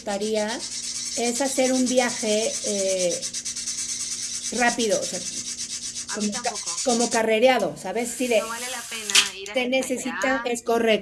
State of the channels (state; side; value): identical; both; correlation 1.00